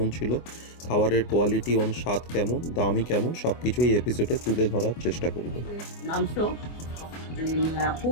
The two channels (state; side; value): late; right; 24 ms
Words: ছিল, খাবারের কোয়ালিটি স্বাদ কেমন, দামই কেমন, সব কিছুই এপিসোডে তুলে ধরার চেষ্টা করব। মাংস